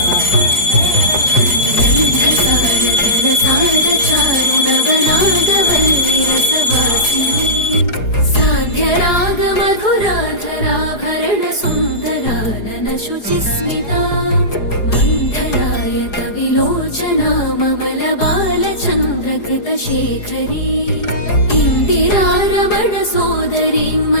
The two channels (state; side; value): late; right; 4.8 ms